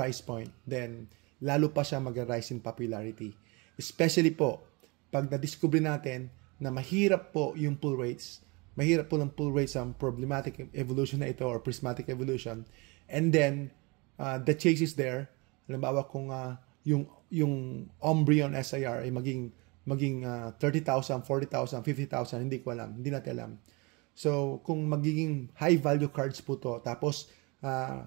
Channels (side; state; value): left; quieter; 27.6 dB